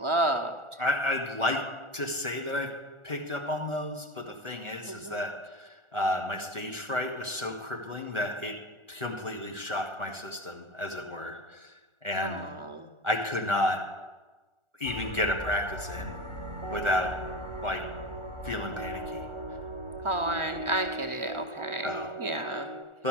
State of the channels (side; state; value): left; late; 1.4 ms